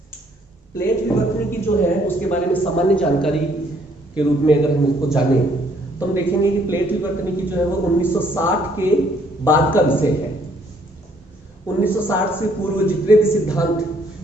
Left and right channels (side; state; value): both; normal; correlation 0.65